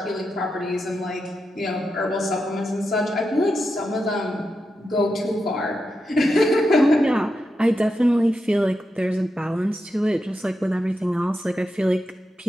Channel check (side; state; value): both; normal; correlation 0.87